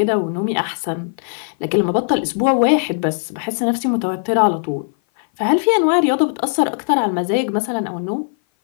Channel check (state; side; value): silent; right; 57 dB below the other